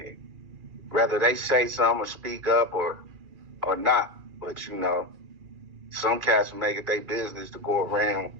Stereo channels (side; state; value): left; late; 2.4 ms